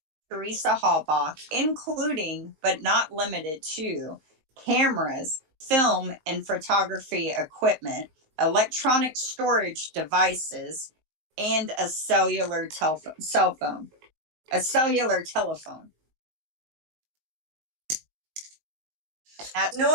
Teresa Halbach, including but not limited to cameras, film and photography equipment, electronic storage devices, and a cellular telephone.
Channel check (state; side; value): late; left; 19 ms